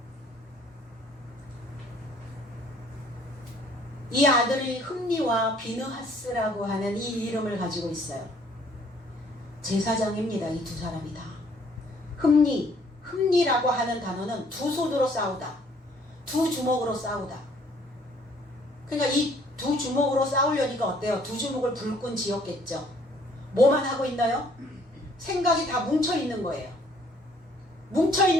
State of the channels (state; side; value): normal; both; correlation 0.61